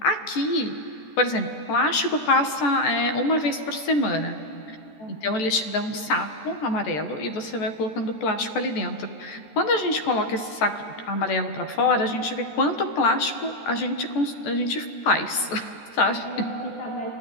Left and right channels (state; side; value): late; right; 14 ms